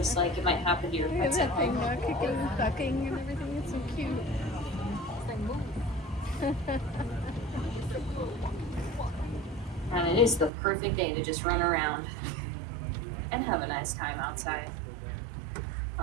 like it might happen to your pets at home. Kicking and ducking and everything. It's so cute. And it is the perfect day to just run around and have a nice time outside.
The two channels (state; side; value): drops out; left; at 10.5 s